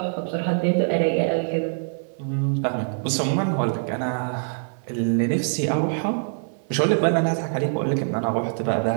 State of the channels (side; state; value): left; silent; 56 dB below the other